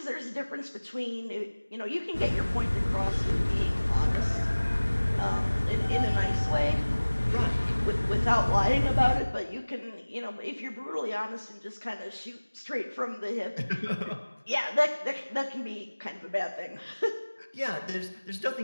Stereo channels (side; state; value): both; inverted; correlation -1.00